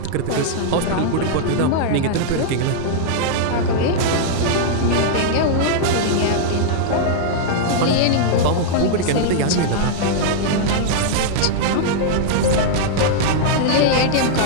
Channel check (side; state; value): both; different; correlation -0.01